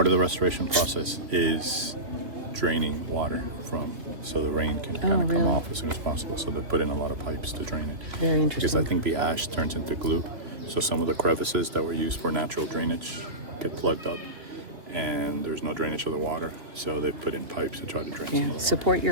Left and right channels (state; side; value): late; left; 2.6 ms